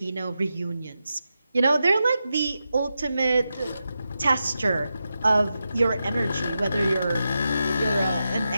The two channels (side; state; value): both; inverted; correlation -0.89